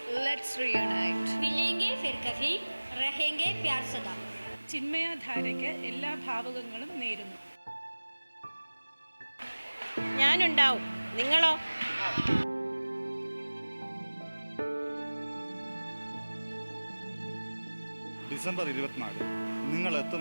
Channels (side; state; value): both; inverted; correlation -1.00